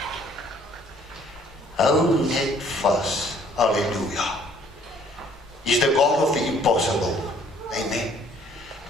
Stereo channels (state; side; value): normal; both; correlation 0.60